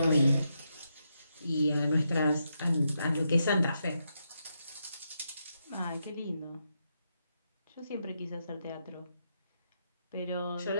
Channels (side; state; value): both; inverted; correlation -0.83